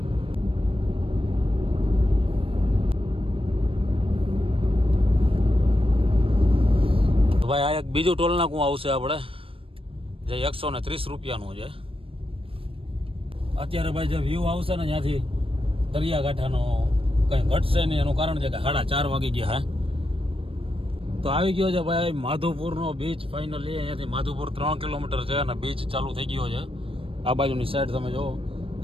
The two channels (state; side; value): late; left; 0.26 ms